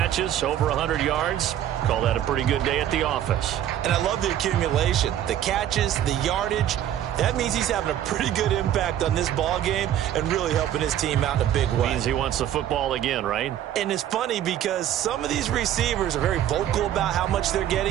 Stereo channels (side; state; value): left; quieter; 11.3 dB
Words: over 100 yards. Call that a pretty good day at the office. And I love the accumulation, the catches, the yardage. That means he's having a pretty good impact on this ball game and really helping his team out in a big way. Means he wants the football again, right? And it's funny because some of these receivers are very vocal about how much they're